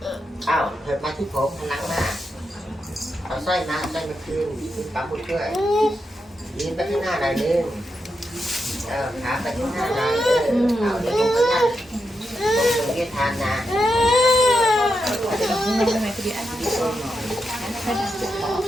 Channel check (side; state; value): both; normal; correlation 0.86